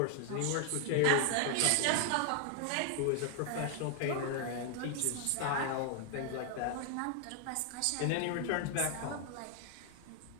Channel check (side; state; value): both; different; correlation 0.00